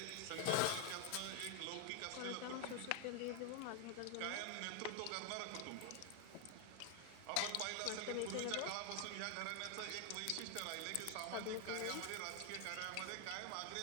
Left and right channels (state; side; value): different; both; correlation 0.00